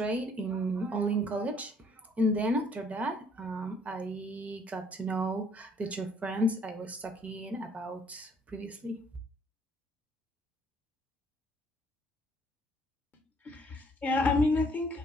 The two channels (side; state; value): both; normal; correlation 0.63